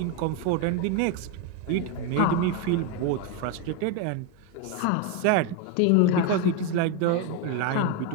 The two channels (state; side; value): different; both; correlation 0.02